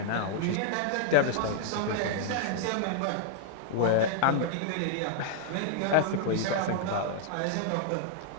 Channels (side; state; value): both; different; correlation -0.01